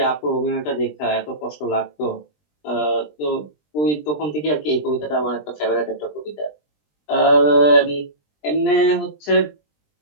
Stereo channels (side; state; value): right; late; 20 ms